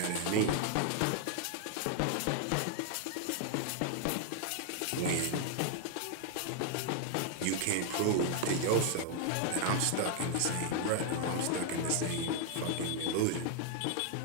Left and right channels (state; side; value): different; both; correlation 0.00